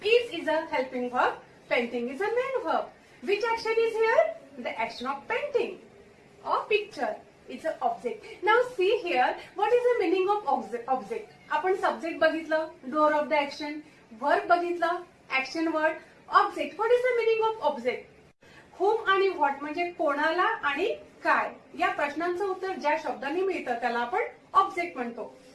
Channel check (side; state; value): both; identical; correlation 1.00